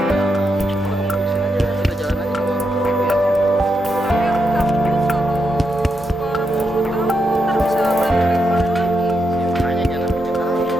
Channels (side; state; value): both; normal; correlation 0.83